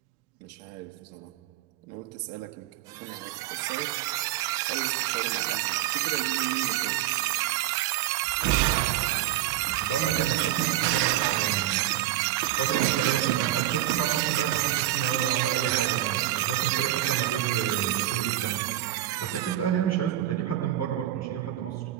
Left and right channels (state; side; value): quieter; left; 13.9 dB